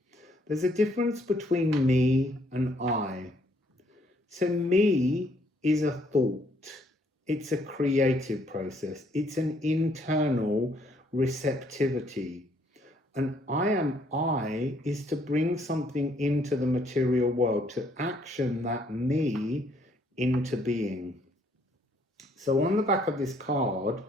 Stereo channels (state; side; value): normal; both; correlation 0.67